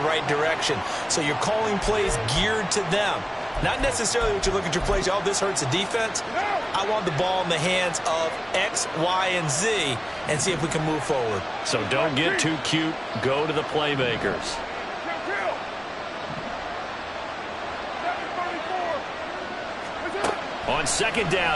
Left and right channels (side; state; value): both; identical; correlation 1.00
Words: right direction. So you're calling plays geared to them. Not necessarily what you look at your plays, oh, this hurts the defense. I want the ball in the hands of X, Y, and Z and see if we can move forward. So don't get too cute. Go to the playmakers. On second down,